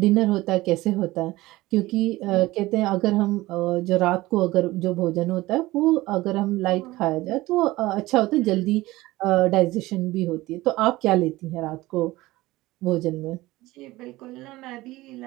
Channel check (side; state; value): left; quieter; 18.7 dB